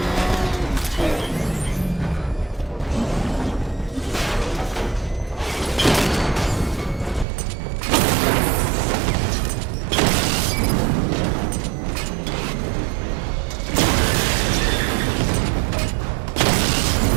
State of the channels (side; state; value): left; drops out; at 7.2 s